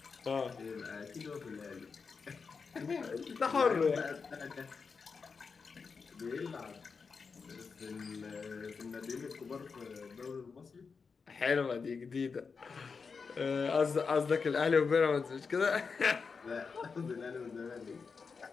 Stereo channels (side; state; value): right; quieter; 5.2 dB